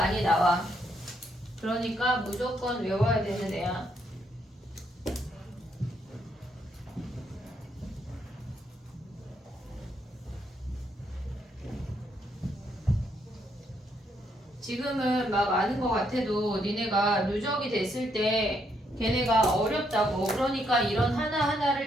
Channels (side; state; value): both; normal; correlation 0.75